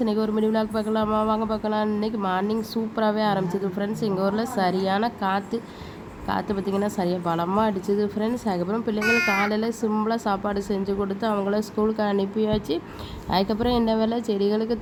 இன்றைக்கி ஒரு மினி விலாக் பார்க்கலாமா? வாங்க பார்க்கலாம். இன்றைக்கி மார்னிங் சூப்பராகவே ஆரம்பிச்சிது ஃப்ரெண்ட்ஸ். எங்கள் ஊரில் சரியான காற்று பார்த்திங்கன்னா சரியாக பலமாக அடிச்சுது ஃப்ரெண்ட்ஸ். அதுக்கப்புறம் பிள்ளைங்களுக்கு காலையில் சிம்பிளாக சாப்பாடு செஞ்சு கொடுத்து அவங்கள ஸ்கூலுக்கு அனுப்பியாச்சு. அதுக்கப்புறம் என்ன வேலை, செடிகளுக்கு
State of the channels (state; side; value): identical; both; correlation 1.00